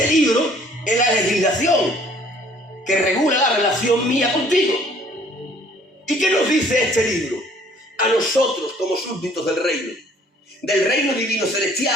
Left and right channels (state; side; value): normal; both; correlation 0.57